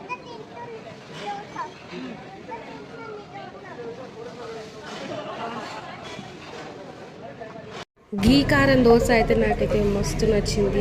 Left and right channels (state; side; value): identical; both; correlation 1.00